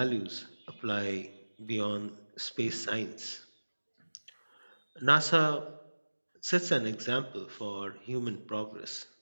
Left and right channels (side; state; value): both; inverted; correlation -1.00